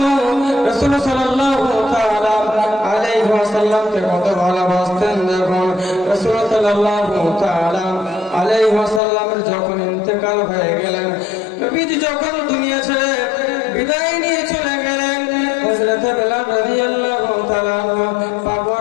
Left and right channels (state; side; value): drops out; right; at 9.0 s